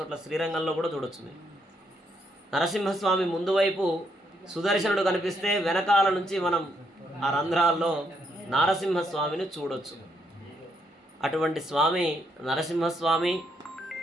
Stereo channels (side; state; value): both; normal; correlation 0.75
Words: శ్రీరంగంలో కూడా చూడొచ్చు. మీరు నరసింహస్వామి ముందు వైపు సుదర్శనుడు కనిపిస్తే వెనకాల నుంచి మనం ఆ రంధ్రాల్లో నారసింహస్వామిని చూడొచ్చు. అటువంటి స్వామి నరసింహస్వామి